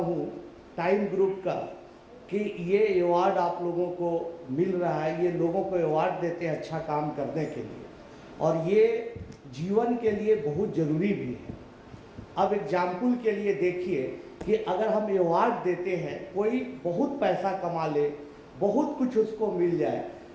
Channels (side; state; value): both; identical; correlation 1.00